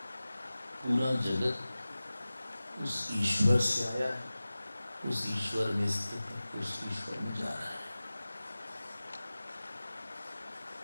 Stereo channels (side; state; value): both; inverted; correlation -0.97